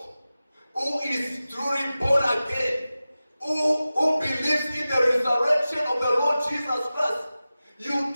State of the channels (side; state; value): both; inverted; correlation -0.95